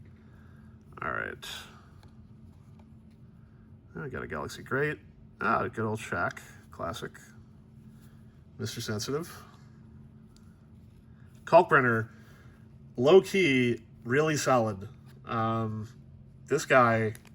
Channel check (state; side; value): identical; both; correlation 1.00